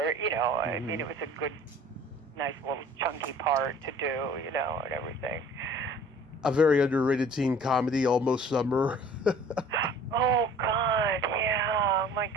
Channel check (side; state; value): both; normal; correlation 0.49